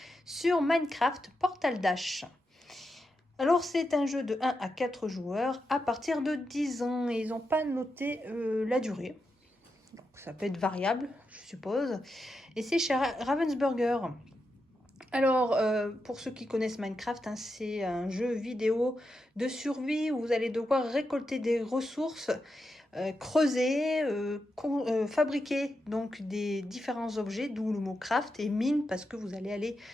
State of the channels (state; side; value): normal; both; correlation 0.87